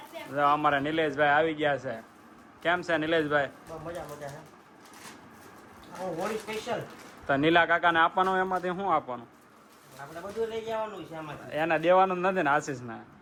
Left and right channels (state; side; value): identical; both; correlation 1.00